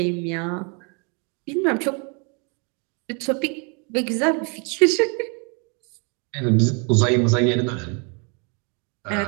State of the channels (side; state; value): left; quieter; 35.3 dB